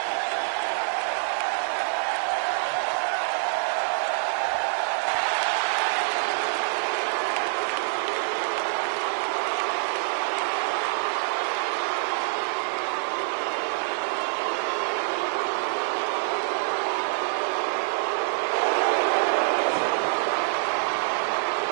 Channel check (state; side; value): silent; left; digital silence